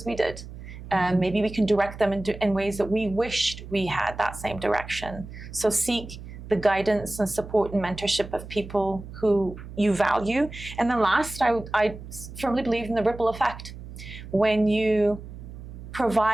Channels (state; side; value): noise; right; hum, 13 dB below the sound